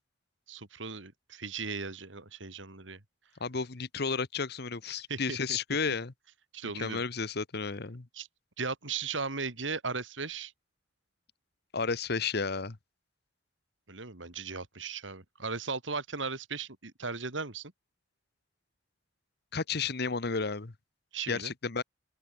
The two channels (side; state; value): both; normal; correlation 0.02